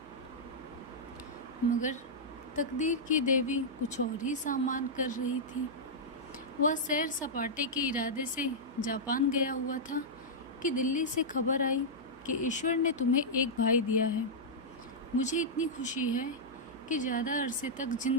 मगर तकदीर की देवी कुछ और ही सामान कर रही थी। वह सैर सपाटे के इरादे से जापान गया हुआ था कि दिल्ली से खबर आई कि ईश्वर ने तुम्हें एक भाई दिया है। मुझे इतनी खुशी है कि ज़्यादा अरसे तक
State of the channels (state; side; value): noise; right; hum, 24 dB below the sound